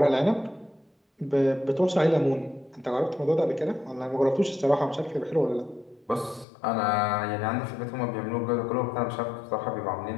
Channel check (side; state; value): right; drops out; at 6.5 s